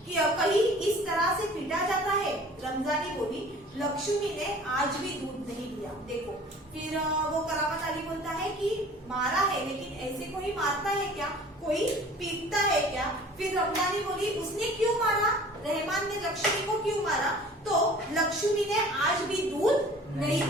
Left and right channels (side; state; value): both; normal; correlation 0.47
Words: कि कहीं इस तरह से पीटा जाता है? रमजानी बोली, लक्ष्मी ने आज भी दूध नहीं दिया। देखो, फिर वो करामत अली बोलता है कि मारा है, लेकिन ऐसे कोई मारता है क्या? कोई पीटता है क्या? फिर रमजानी बोली, उसने क्यों मारा? रहमान ने लक्ष्मी को क्यों मारा? तो लक्ष्मी ने आज भी दूध नहीं